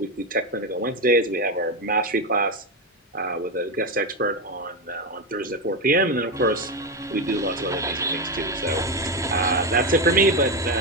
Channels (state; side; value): normal; both; correlation 0.12